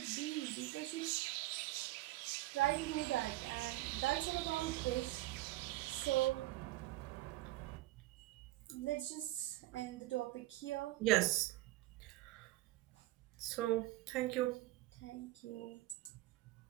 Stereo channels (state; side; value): quieter; left; 17.6 dB